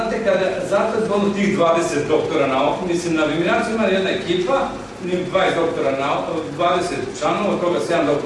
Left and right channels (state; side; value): identical; both; correlation 1.00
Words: zato je zgodno tih 20 doktora nauka, mislim, na Viminaciju ima jedna ekipa, 20 doktora nauka, 20 članova, od toga 7